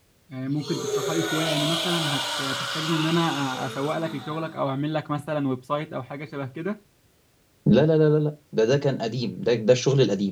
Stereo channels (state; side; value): identical; both; correlation 1.00